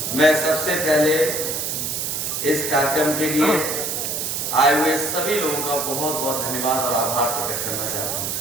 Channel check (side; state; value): right; noise; hiss, 2 dB below the sound